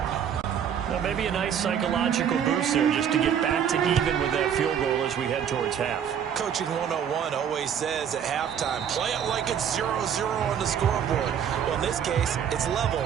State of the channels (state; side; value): quieter; left; 8.5 dB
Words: Well, maybe a nice psychological boost there just to get back to even with that field goal as we head towards half. Coaching 101 always says at halftime, play it like it's 0-0 on the scoreboard. Well, in this case, it's level,